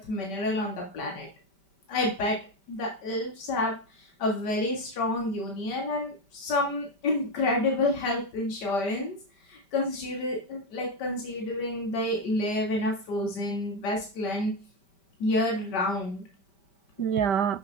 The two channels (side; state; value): right; late; 5.1 ms